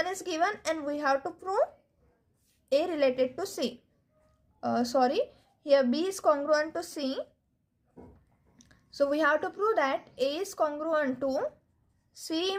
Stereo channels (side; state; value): both; identical; correlation 1.00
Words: is given and we have to prove A related to C. Here B is congruent to C. So we have to prove that A is congruent to C